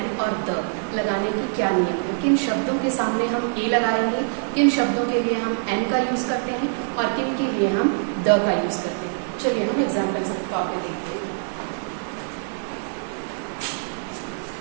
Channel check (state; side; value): silent; left; digital silence